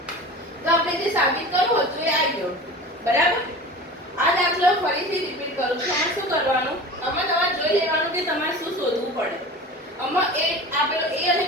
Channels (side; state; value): both; normal; correlation 0.35